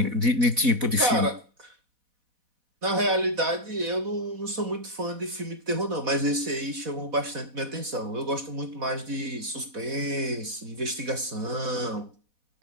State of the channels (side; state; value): left; late; 4.1 ms